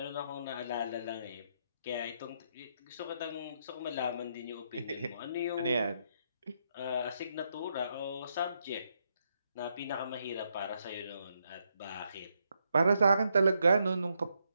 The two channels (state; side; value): inverted; both; correlation -0.78